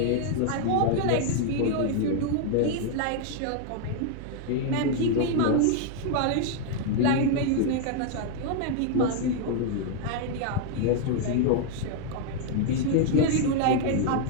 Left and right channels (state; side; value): different; both; correlation 0.00